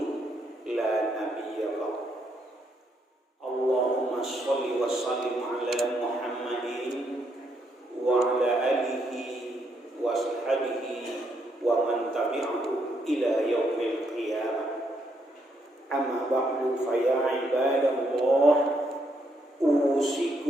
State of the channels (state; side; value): normal; both; correlation 0.75